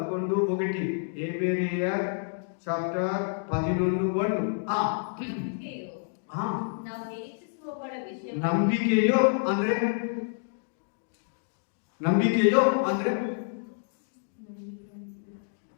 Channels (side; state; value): right; silent; digital silence